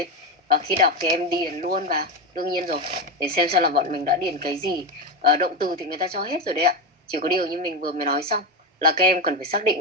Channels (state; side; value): normal; both; correlation 0.13